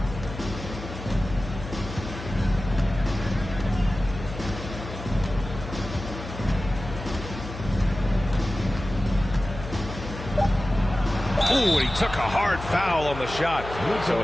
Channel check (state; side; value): noise; left; hum, 10 dB below the sound